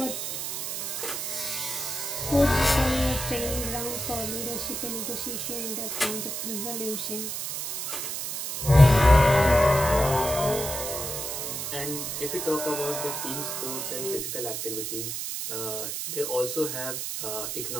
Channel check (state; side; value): noise; right; hiss, 4 dB below the sound